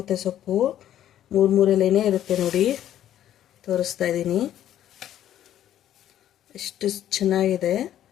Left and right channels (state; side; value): quieter; right; 11.5 dB